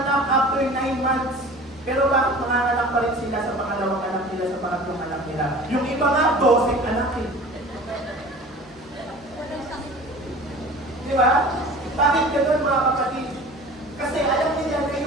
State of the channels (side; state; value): both; normal; correlation 0.41